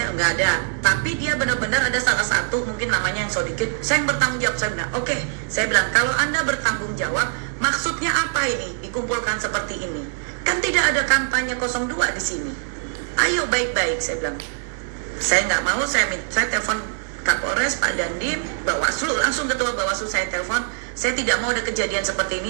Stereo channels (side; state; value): left; silent; digital silence